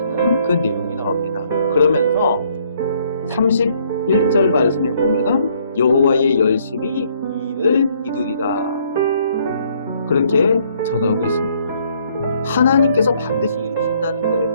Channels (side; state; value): both; inverted; correlation -0.66